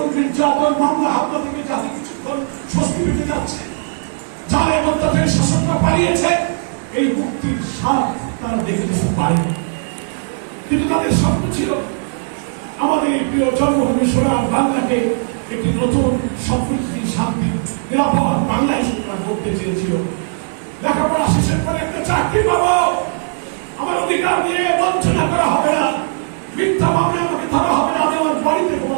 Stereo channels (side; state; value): left; silent; digital silence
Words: নির্যাতন, মামলা হামলা থেকে যাদের কিছুক্ষণ স্বস্তি পেতে যাচ্ছে, জালের অত্যাচারী শাসনটা পালিয়েছে, এই মুক্তির স্বাদ তারা দেখে যেতে পারে। কিন্তু তাদের স্বপ্ন ছিল আমাদের প্রিয় জন্মভূমি সোনার বাংলাকে একটি নতুন সমৃদ্ধি, শান্তি, নিরাপদ বাংলাদেশ করতে চেয়েছিল। লেখাপড়া অধিকার দিয়ে বঞ্চনা করা হবে না, মিথ্যা মামলা আমাকে ধরা হবে না, আমি আমার বাড়িতে